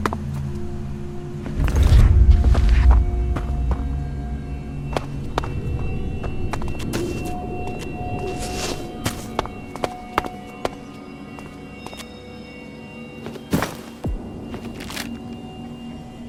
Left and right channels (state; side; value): identical; both; correlation 1.00